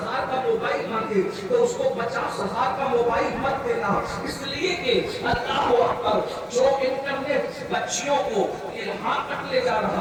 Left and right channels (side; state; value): both; identical; correlation 1.00